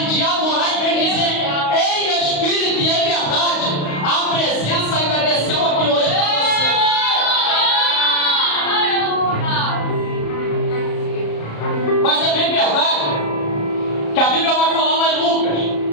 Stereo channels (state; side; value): late; right; 35 ms